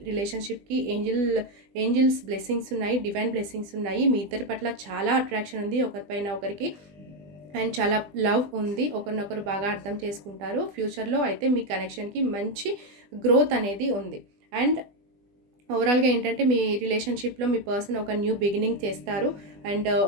రిలేషన్‌షిప్‌కి ఏంజిల్స్ బ్లెస్సింగ్స్ ఉన్నాయి. డివైన్ బ్లెస్సింగ్స్ ఉన్నాయి. మీ ఇద్దరి పట్ల చాలా అట్రాక్షన్ ఉంది ఒకరిపైన ఒకరికి. అండ్ చాలా లవ్ ఉంది. ఒకరినొకరు బాగా అర్థం చేసుకుంటారు. ఫ్యూచర్‌లో అయితే మీ కనెక్షన్‌కి మంచి గ్రోత్ అనేది ఉంది. అండ్ ఓవరాల్‌గా ఏంటంటే మీ రిలేషన్‌షిప్‌లో మీ పర్సన్ ఒక న్యూ బిగినింగ్ చేస్తారు. అండ్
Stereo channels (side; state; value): left; late; 20 ms